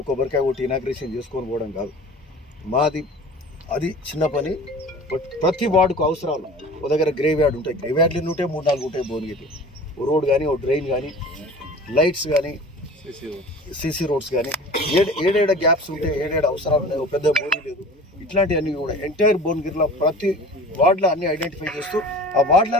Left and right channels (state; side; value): normal; both; correlation 0.41